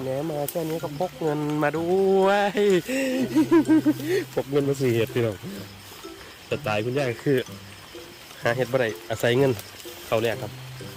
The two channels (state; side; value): identical; both; correlation 1.00